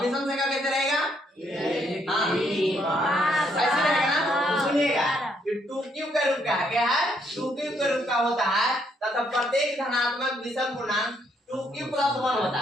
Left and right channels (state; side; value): normal; both; correlation 0.72